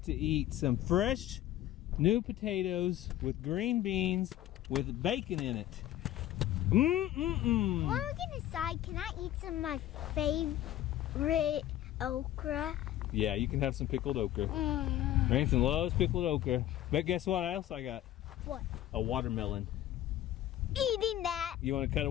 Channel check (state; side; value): quieter; right; 13.1 dB